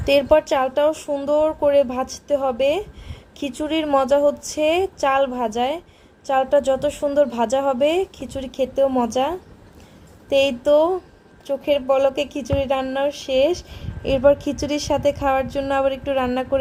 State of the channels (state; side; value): identical; both; correlation 1.00